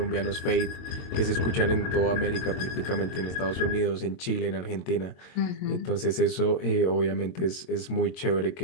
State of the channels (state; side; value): late; right; 22 ms